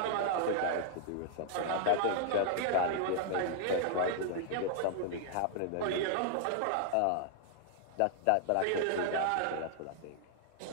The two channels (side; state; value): both; different; correlation 0.00